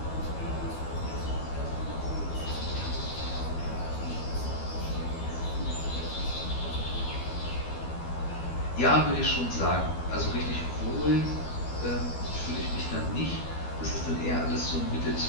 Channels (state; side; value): late; right; 12 ms